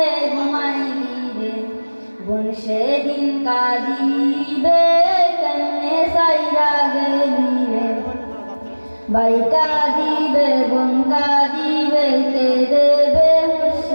ঘুমাইবি রে, বোন সেদিন কাঁদিবে কেমনে সাইরা গেলি রে। ভাই কাঁদিবে বোন কাঁদিবে কে দেবে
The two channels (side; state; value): both; inverted; correlation -1.00